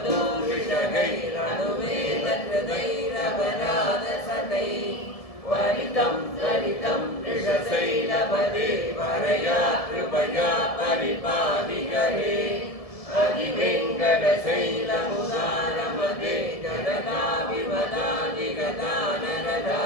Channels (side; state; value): right; late; 1.7 ms